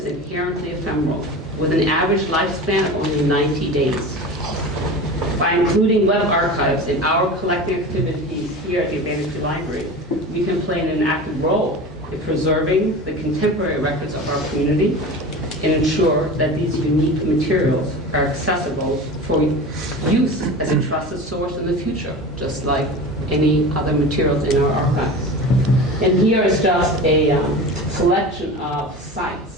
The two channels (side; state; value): both; normal; correlation 0.32